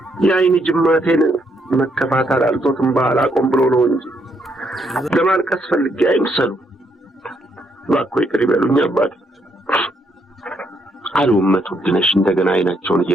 የአይን ጅማቴን መከፋት አላልቶትም ባላቆም ብሎ ነው እንጂ ለማልቀስ ፈልጌ አይምሰሉ። እባክዎ ይቅር ይበሉኝ አባቴ አሉ እመት ውድነሽ እንደገና አይናቸውን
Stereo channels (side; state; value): both; normal; correlation 0.74